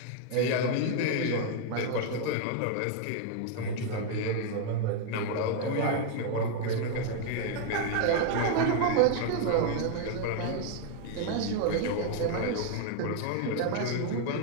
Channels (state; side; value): different; both; correlation 0.00